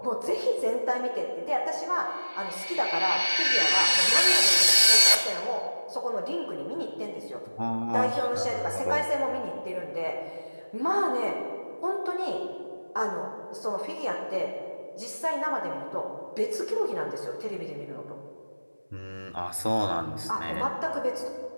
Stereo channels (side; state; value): both; inverted; correlation -1.00